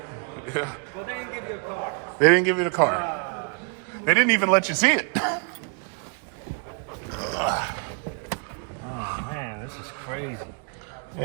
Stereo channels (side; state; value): left; quieter; 37.7 dB